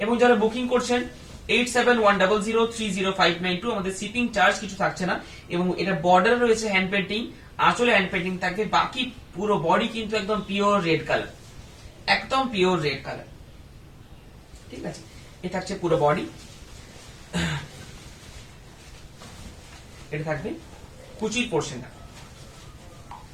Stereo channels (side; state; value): both; identical; correlation 1.00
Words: এবং যারা বুকিং করছেন 8710030592, আমাদের শিপিং চার্জ কিছু থাকছে না, এবং এটা বর্ডার রয়েছে হ্যান্ড পেন্টিং, আঁচলে হ্যান্ড পেন্টিং থাকবে, বাকি পুরো বডি কিন্তু একদম পিওর রেড কালার, একদম পিওর রেড কালার। ঠিক আছে, এ থাকছে পুরো বডি, এটা থাকবে কুচির পোর্শনটা,